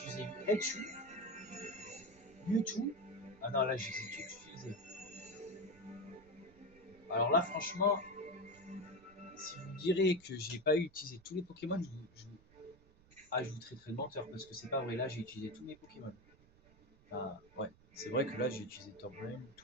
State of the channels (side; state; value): right; noise; rumble, 26 dB below the sound